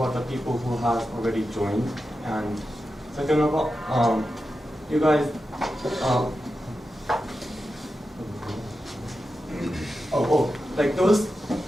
the people who have already joined, and second of all, you guys. Those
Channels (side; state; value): both; normal; correlation 0.90